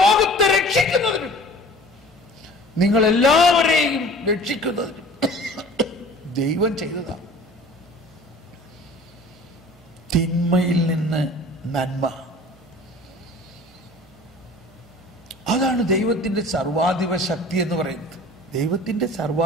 രക്ഷിക്കുന്നതിനും നിങ്ങളെല്ലാവരെയും രക്ഷിക്കുന്നതിനും ദൈവം ചെയ്തതാണ്. തിന്മയിൽ നിന്ന് നന്മ, അതാണ് ദൈവത്തിന്റെ സർവാധിപ ശക്തി എന്ന് പറയുന്നത്. ദൈവത്തിന്റെ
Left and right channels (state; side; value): noise; right; hum, 27 dB below the sound